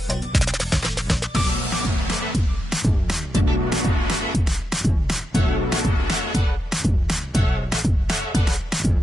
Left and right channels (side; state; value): both; normal; correlation 0.87